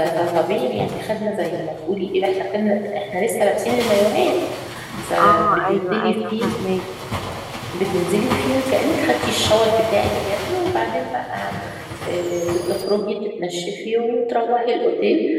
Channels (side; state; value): both; identical; correlation 1.00